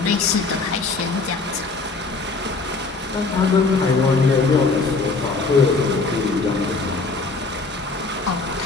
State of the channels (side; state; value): right; quieter; 3.9 dB